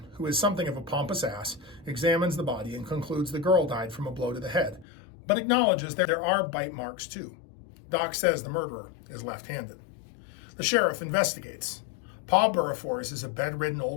who is something of a pompous ass, examines the body and concludes the girl died from a blow to the head, but acknowledges that there are bite marks too. Doc says the murderer is left-handed. The sheriff investigates. Pa Burrifors is a bedridden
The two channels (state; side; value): drops out; right; at 4.9 s